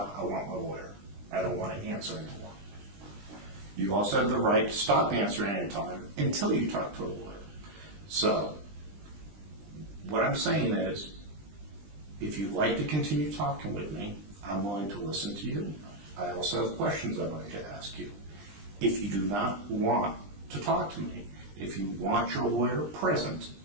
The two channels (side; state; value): left; late; 20 ms